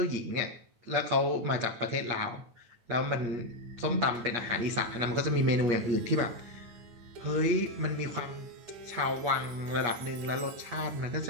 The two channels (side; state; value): left; late; 8.5 ms